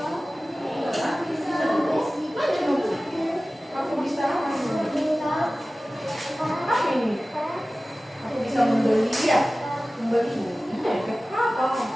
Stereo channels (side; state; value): both; normal; correlation 0.97